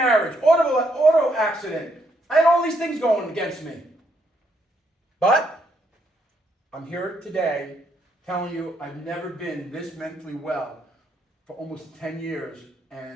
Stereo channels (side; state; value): both; normal; correlation 0.74